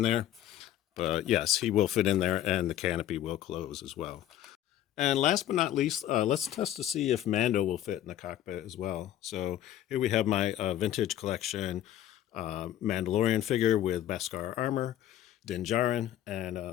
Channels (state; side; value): quieter; right; 12.2 dB